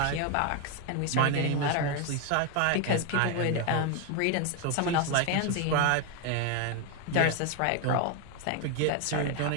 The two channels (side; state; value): both; different; correlation 0.01